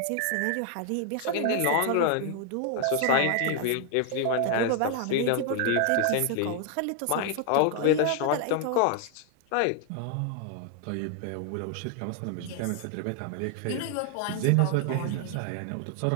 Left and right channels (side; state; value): both; different; correlation 0.00